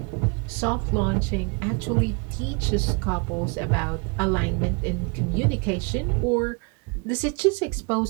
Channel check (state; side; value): quieter; left; 32.1 dB